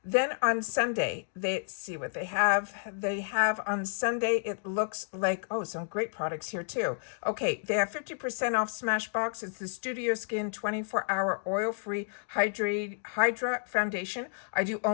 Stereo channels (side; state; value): right; silent; digital silence